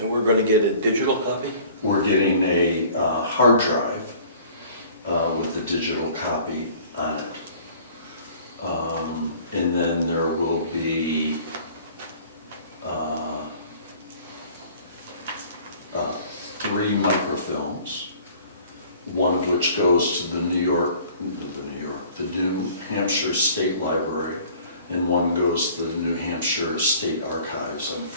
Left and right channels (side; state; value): both; inverted; correlation -0.50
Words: we're gonna get a digital copy? We're getting a hard drive with the digital copy on it. And then there will be 3 microfilms, one of which goes to the New Hampshire State Library, and one goes to the New Hampshire State Archives on